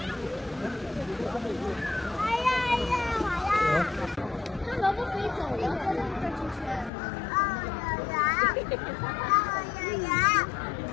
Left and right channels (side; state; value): right; drops out; at 6.9 s